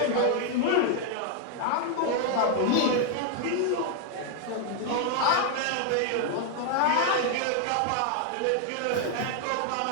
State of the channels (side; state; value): both; different; correlation 0.00